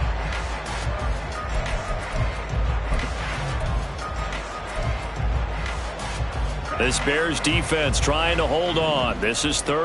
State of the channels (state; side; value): identical; both; correlation 1.00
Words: This Bears defense trying to hold on. This is